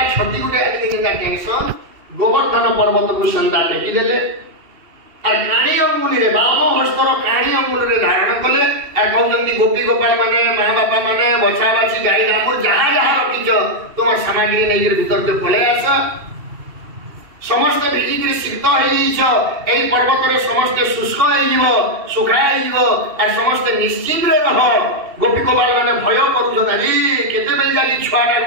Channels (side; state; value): left; late; 2.7 ms